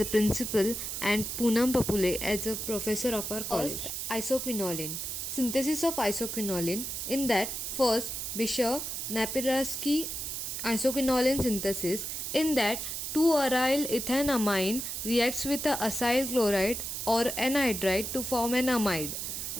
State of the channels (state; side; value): noise; right; hiss, 4 dB below the sound